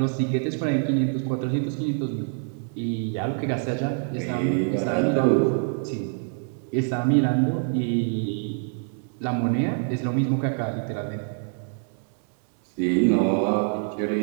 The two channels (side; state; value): left; silent; 61 dB below the other